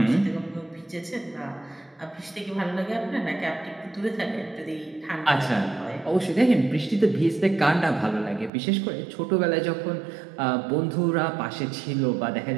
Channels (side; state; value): left; drops out; at 8.5 s